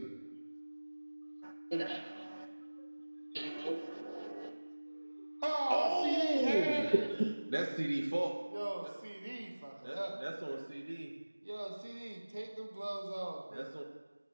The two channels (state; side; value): inverted; both; correlation -1.00